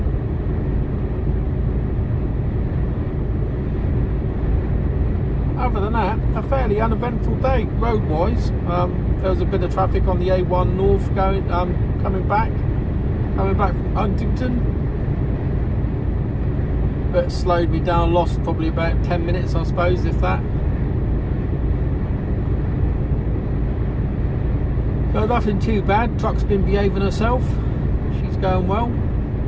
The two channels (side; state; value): both; identical; correlation 1.00